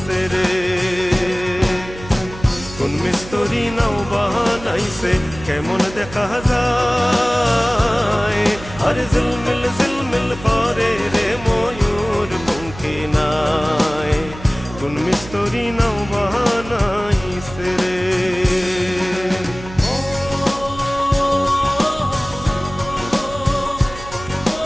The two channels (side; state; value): right; noise; hum, 15 dB below the sound